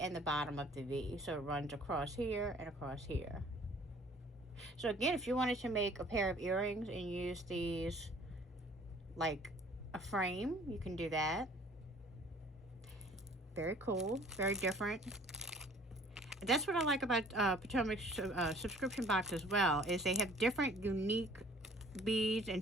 the bottom of the V. So it runs across here and across here. So again, if you wanted to make a pair of earrings and use these like a frame, you can do that. Very cool. Very different. That's what I like about Potomac's subscription box as well, is they have different unique beads and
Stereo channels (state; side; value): normal; both; correlation 0.53